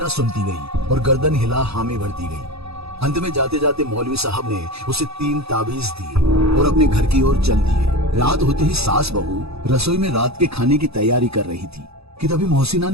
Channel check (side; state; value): left; late; 0.78 ms